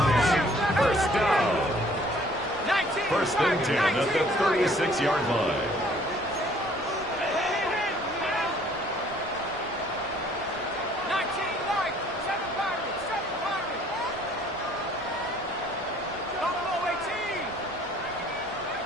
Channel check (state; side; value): normal; both; correlation 0.58